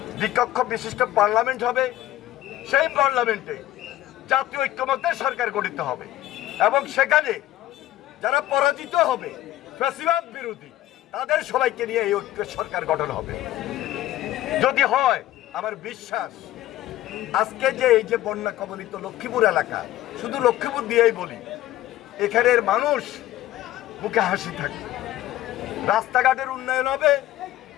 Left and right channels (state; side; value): quieter; right; 14.7 dB